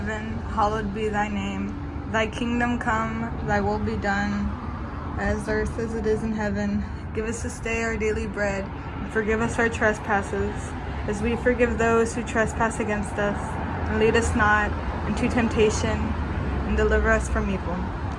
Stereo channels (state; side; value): identical; both; correlation 1.00